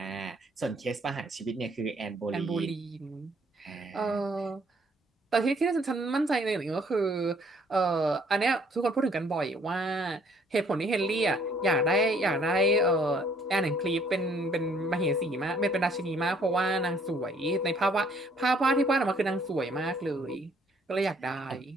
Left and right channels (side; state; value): both; normal; correlation 0.63